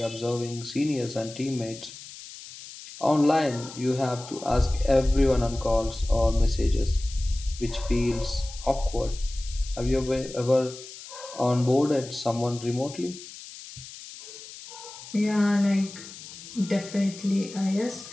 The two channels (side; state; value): left; noise; hiss, 15 dB below the sound